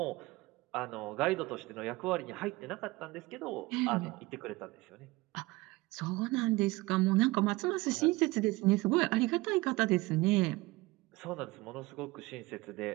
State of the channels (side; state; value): left; quieter; 21.3 dB